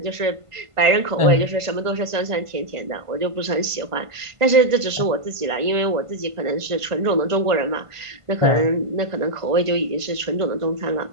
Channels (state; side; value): late; left; 1.5 ms